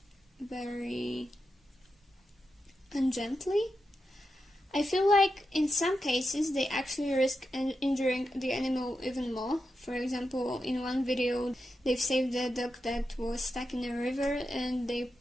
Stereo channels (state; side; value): normal; both; correlation 0.88